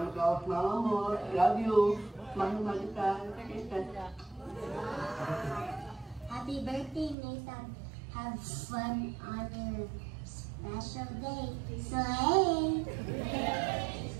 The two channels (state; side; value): drops out; left; at 7.2 s